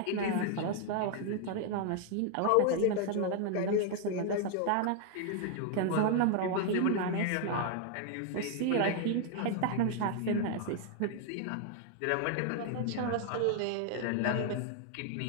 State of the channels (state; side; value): different; both; correlation 0.00